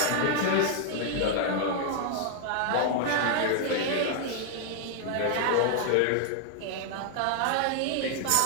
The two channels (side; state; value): both; different; correlation 0.00